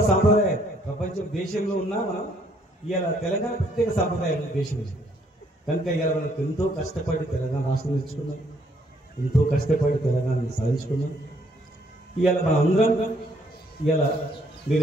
సాంప్రదాయం ప్రపంచం దేశంలో ఉన్నా మనం ఇవాళ తెలంగాణ ప్రత్యేక సాంప్రదాయం దేశం. కనుక ఇవాళ మనకు ఎంతో కష్టపడి తెలంగాణ రాష్ట్రం తెచ్చుకున్నాం, ఎంతో కష్టపడి తెలంగాణని సాధించుకున్నాం. ఇవాళ మన అందరం ఇవాళ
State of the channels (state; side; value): normal; both; correlation 0.67